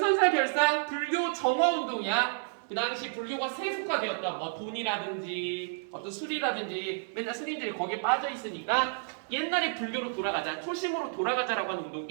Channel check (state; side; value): silent; left; 57 dB below the other